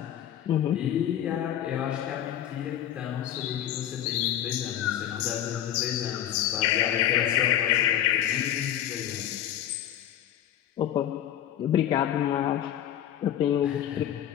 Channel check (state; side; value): quieter; right; 11.1 dB